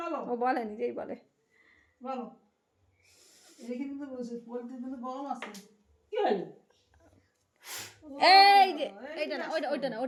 বলো ও বলে নিজেই বলে বলো এটা কিন্তু বলছে পোলট্রি কিন্তু গরম আছে কি হলো এই যে এইটা না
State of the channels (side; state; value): both; identical; correlation 1.00